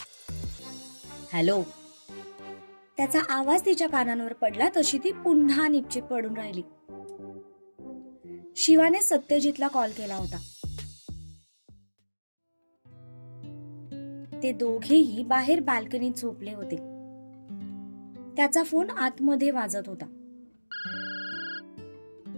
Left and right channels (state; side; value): inverted; both; correlation -1.00